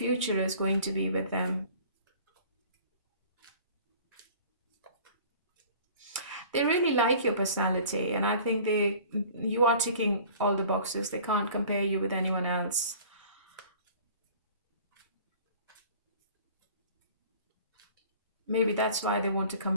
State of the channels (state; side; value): inverted; both; correlation -0.47